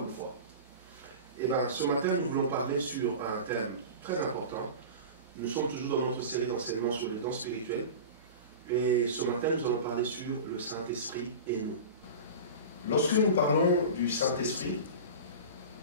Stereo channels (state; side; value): inverted; both; correlation -0.31